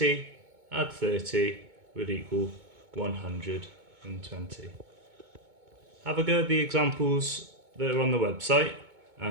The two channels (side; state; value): left; late; 2.2 ms